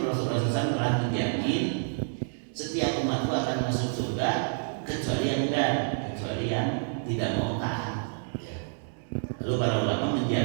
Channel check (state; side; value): silent; left; digital silence